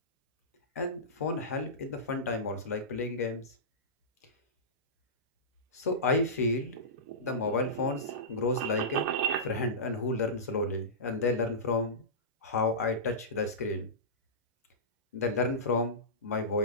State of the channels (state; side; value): normal; both; correlation -0.19